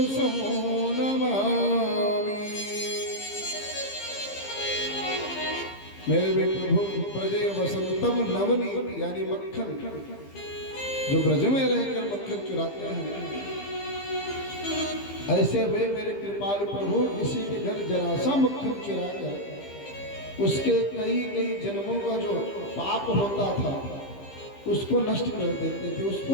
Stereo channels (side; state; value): right; late; 15 ms